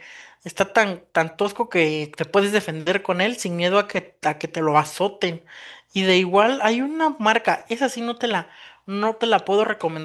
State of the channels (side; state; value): both; identical; correlation 1.00